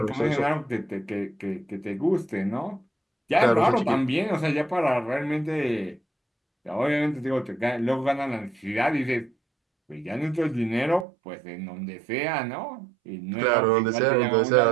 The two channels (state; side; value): drops out; left; at 11.1 s